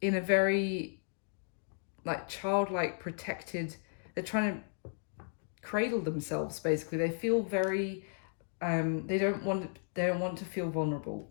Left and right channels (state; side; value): silent; right; digital silence